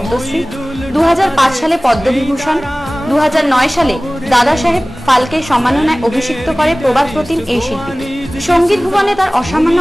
2005 সালে পদ্মবিভূষণ, 2009 সালে দাদা সাহেব ফালকে সম্মাননায় অভিষিক্ত করে প্রবাদ প্রতিম এই শিল্পীকে। সঙ্গীত ভুবনে তার অসামান্য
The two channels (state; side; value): normal; both; correlation 0.98